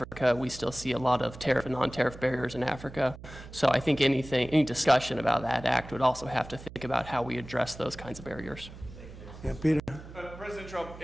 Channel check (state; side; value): noise; right; hum, 15 dB below the sound